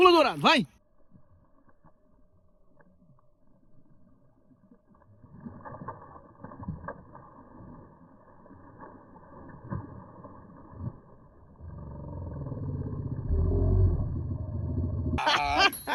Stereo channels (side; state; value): both; identical; correlation 1.00